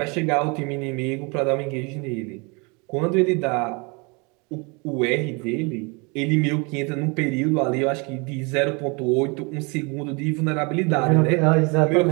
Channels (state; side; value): quieter; left; 30.2 dB